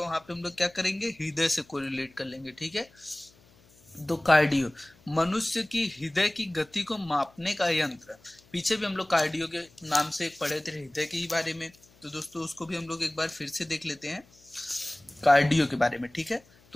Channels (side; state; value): left; noise; hum, 29 dB below the sound